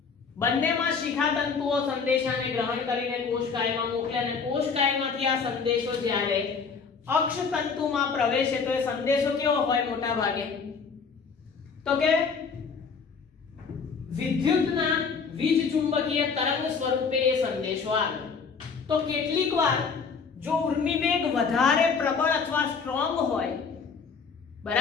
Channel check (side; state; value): right; quieter; 5.5 dB